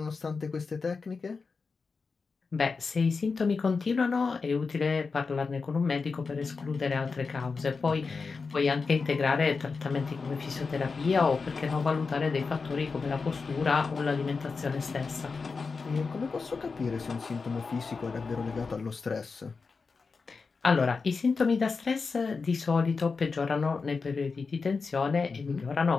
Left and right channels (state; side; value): quieter; right; 4.6 dB